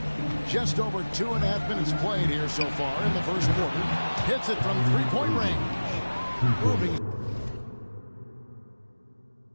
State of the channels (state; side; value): inverted; both; correlation -1.00